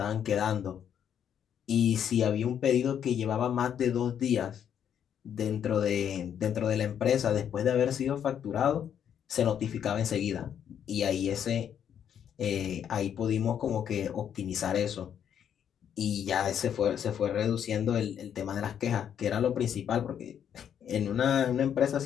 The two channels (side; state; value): right; quieter; 8.9 dB